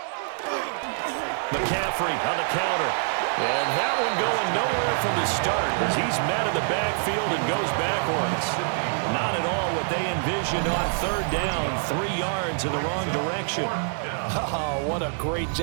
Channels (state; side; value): silent; left; 61 dB below the other